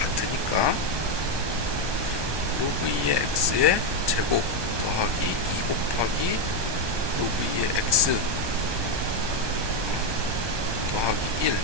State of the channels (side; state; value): left; late; 1.2 ms